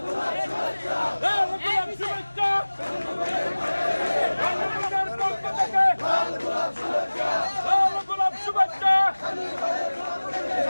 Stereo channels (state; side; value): inverted; both; correlation -1.00